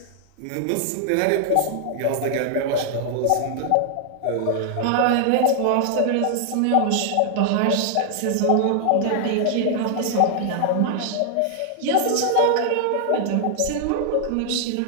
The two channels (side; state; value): both; different; correlation 0.00